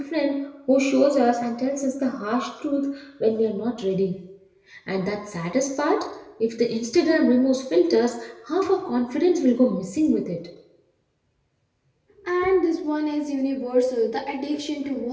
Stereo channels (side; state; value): both; identical; correlation 1.00